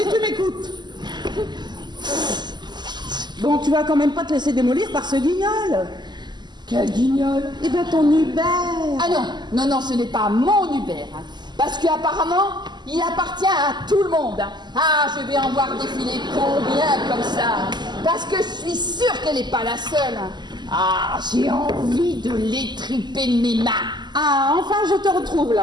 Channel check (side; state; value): left; late; 0.21 ms